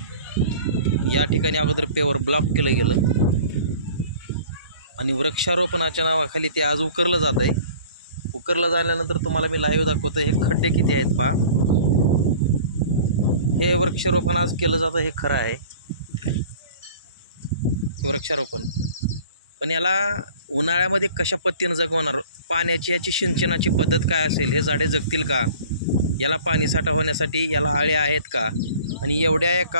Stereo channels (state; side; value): inverted; both; correlation -0.46